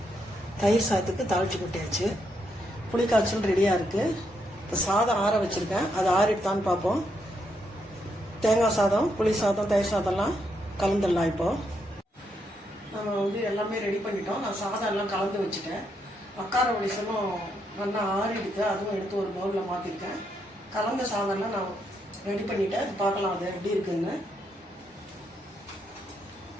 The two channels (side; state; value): both; normal; correlation 0.78